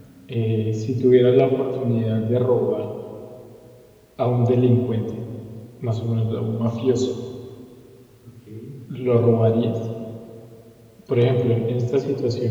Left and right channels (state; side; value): identical; both; correlation 1.00